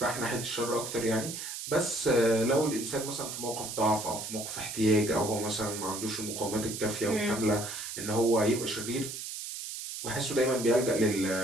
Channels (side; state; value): right; noise; hiss, 7 dB below the sound